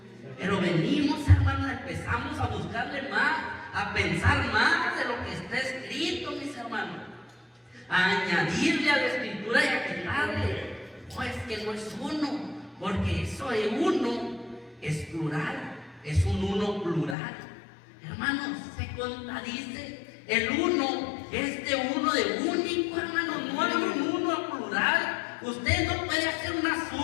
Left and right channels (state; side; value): drops out; right; at 17.2 s